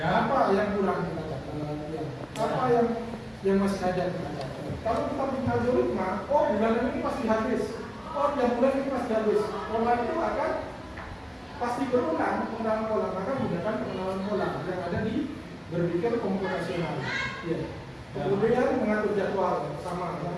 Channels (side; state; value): both; identical; correlation 1.00